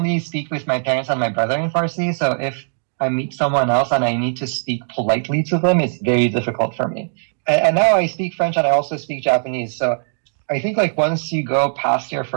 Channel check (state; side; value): silent; left; digital silence